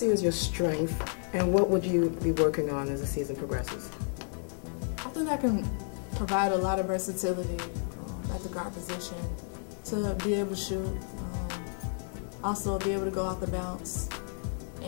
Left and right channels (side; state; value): right; silent; 57 dB below the other